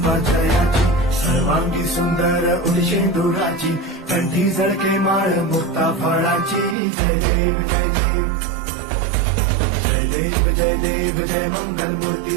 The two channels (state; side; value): drops out; left; at 6.8 s